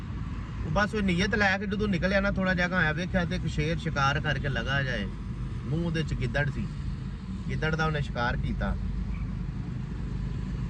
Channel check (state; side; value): identical; both; correlation 1.00